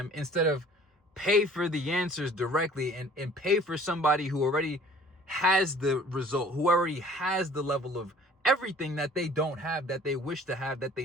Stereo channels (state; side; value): normal; both; correlation 0.51